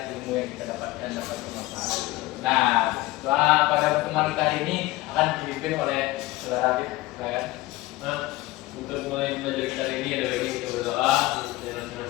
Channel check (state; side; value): quieter; right; 18.7 dB